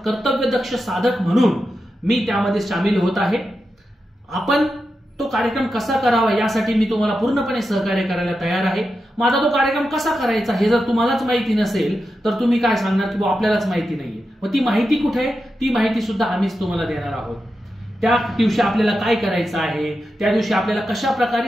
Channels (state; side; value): normal; both; correlation 0.89